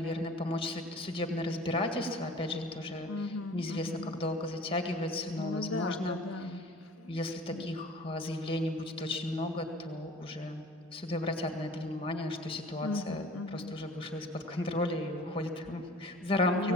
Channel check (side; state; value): both; normal; correlation 0.46